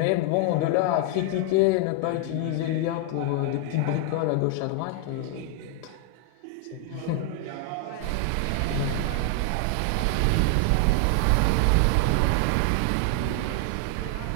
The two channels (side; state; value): both; different; correlation 0.00